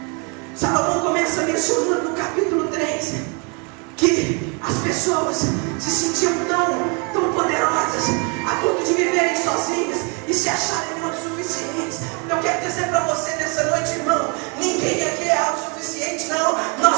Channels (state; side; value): quieter; left; 33.7 dB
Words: Salomão começa mencionando no capítulo 3 que as pessoas se sentiam tão poderosas a ponto de viverem sozinhas e se acharem autossuficientes. Eu quero dizer para você nessa noite, irmão, ninguém aqui é autossuficiente, não.